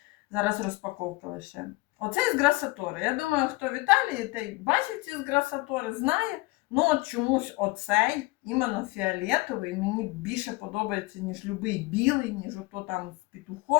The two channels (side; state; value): right; quieter; 22.5 dB